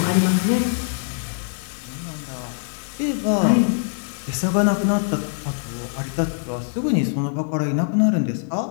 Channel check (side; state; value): right; silent; digital silence